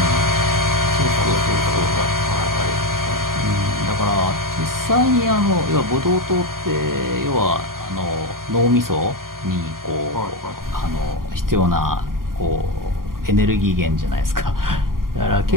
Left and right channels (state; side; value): late; left; 0.91 ms